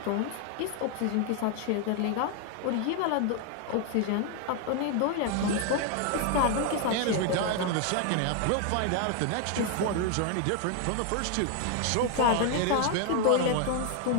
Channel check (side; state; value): both; different; correlation 0.01